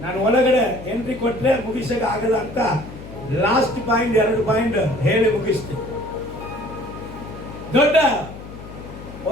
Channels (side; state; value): left; noise; hum, 14 dB below the sound